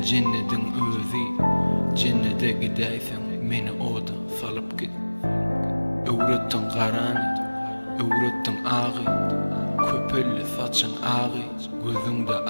cennetin özü. Cennete gideysen meni oda salıp git. Öğrettin karanı, öğrettin ağı, köpüllü saçın ağı, gözünde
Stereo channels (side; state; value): both; inverted; correlation -1.00